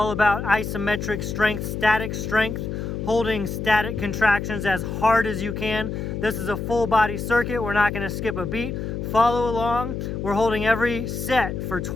about isometric strength, static strength, holding static contractions as hard as you can. This is a full body circuit. We're not going to skip a beat. Follow along. We're holding every set for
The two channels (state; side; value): noise; left; hum, 4 dB below the sound